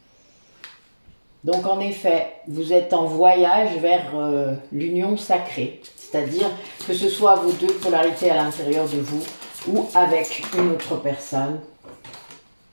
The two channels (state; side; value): inverted; both; correlation -1.00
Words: Donc en effet, vous êtes en voyage vers l'union sacrée, c'est-à-dire que ce soit vos deux polarités à l'intérieur de vous ou avec une autre personne.